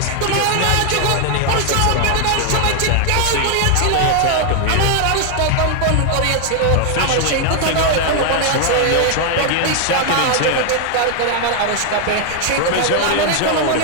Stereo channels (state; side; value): different; both; correlation 0.00